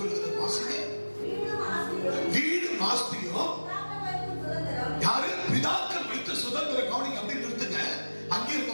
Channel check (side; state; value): both; inverted; correlation -1.00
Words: சொல்லுகிறது. வாசிங்க. வீடும் ஆஸ்தியும் யாரு? பிதாக்கள் வைத்த சுதந்திரம். கவனிங்க, அப்படி நிறுத்துங்க. அங்கே